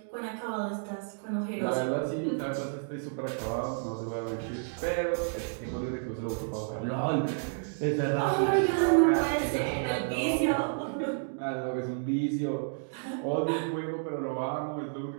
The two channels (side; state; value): left; silent; digital silence